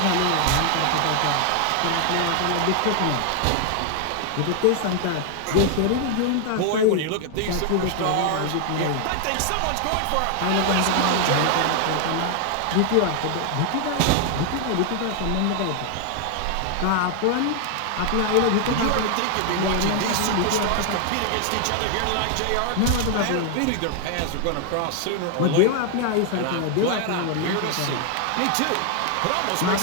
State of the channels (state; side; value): different; both; correlation 0.00